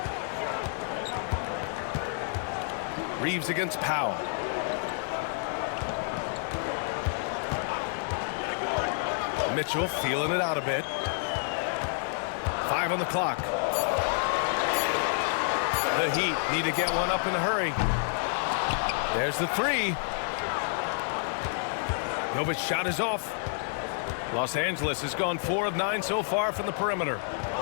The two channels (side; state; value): right; silent; digital silence